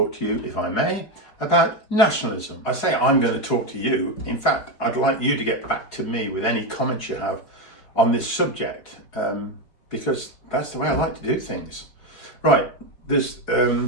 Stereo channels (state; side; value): late; right; 4.8 ms